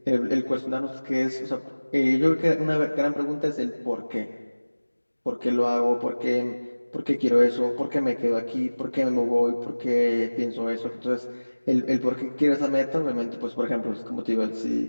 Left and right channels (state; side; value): inverted; both; correlation -1.00